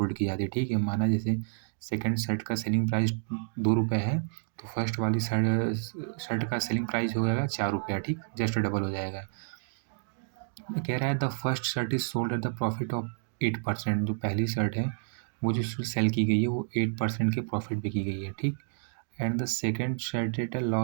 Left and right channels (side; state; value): left; silent; digital silence